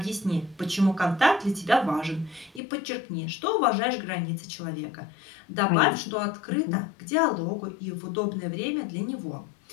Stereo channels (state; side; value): drops out; right; at 2.6 s